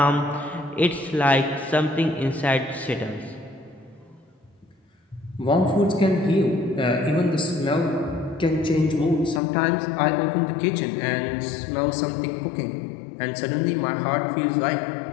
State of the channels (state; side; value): drops out; right; at 9.4 s